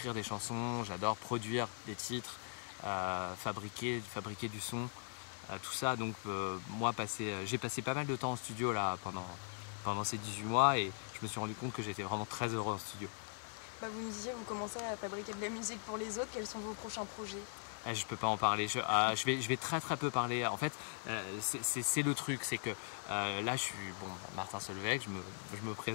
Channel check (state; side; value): silent; right; digital silence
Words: des chansons, j'adore produire des titres, fabriquer du son, tout ça. Donc moi, j'ai passé pas mal de temps en studio là pendant ces 18 mois et je me suis rendu compte que j'étais vraiment très heureux en studio. Vous me disiez, vous commencez à fabriquer de la musique pour les autres. Quels sont vos prochains projets? Je peux pas en parler, je vais très peu parler. En fait, c'est le truc, c'est que là je suis Martin Solveig, je me